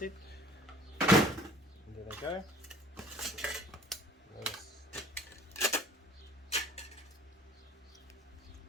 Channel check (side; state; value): both; normal; correlation 0.50